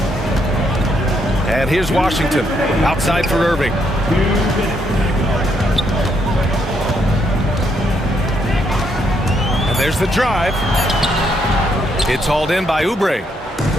And here's Washington. Outside for Irving. And there's the drive. It's hauled in by Oubre.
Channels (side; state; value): both; normal; correlation 0.75